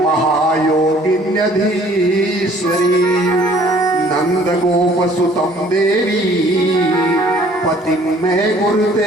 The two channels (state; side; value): normal; both; correlation 0.56